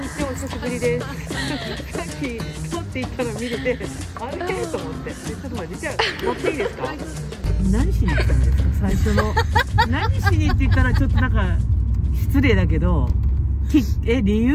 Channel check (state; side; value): identical; both; correlation 1.00